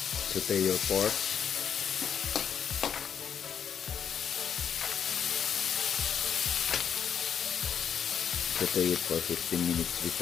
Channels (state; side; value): quieter; right; 7.9 dB